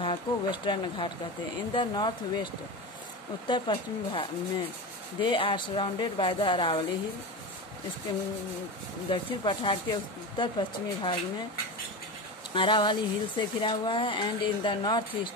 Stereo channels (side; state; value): both; normal; correlation 0.24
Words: को वेस्टर्न घाट कहते हैं. इन द नॉर्थ वेस्ट उत्तर पश्चिमी भाग में they are surrounded by the Aravalli hill. इसके दक्षिण पठार के उत्तर पश्चिमी भाग में अरावली हिल से घिरा हुआ है. And in the north